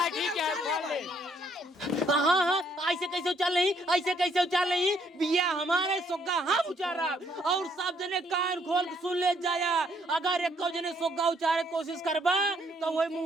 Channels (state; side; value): normal; both; correlation 0.68